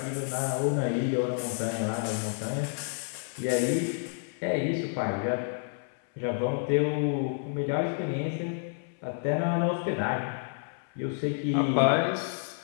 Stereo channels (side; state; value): right; silent; 58 dB below the other